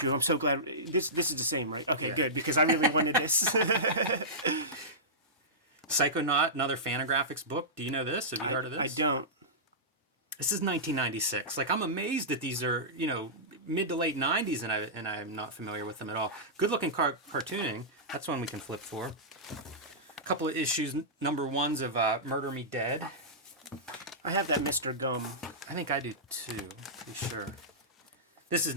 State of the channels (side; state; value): both; normal; correlation -0.16